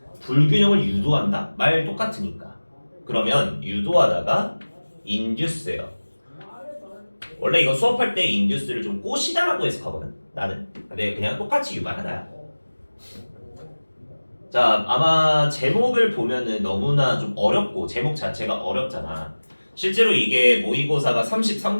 불균형을 유도한다? 말 똑같으니까. 그러면 유도하다가 induce예요. 원래 이거 수업할 때 induce를 좀 꼬시다라고 해석하거든. 나는. 근데 그냥 똑같이 유발하다야. 자, 아마 제목을 보면은 너무나 좀 어렵고 제목 자체가 어렵잖아. 실제로 이게 모의고사가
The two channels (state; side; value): inverted; both; correlation -1.00